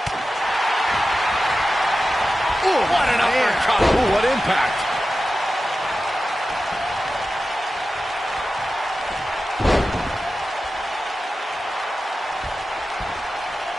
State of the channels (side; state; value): both; normal; correlation 0.93